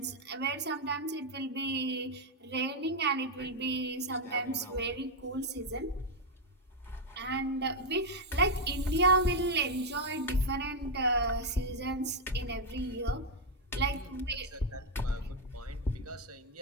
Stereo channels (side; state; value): both; normal; correlation 0.02